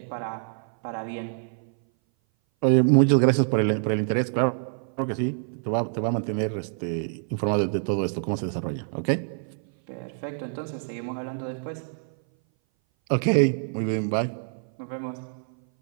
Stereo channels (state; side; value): silent; left; 58 dB below the other